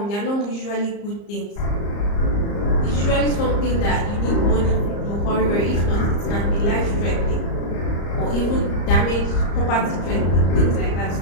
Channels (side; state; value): right; late; 34 ms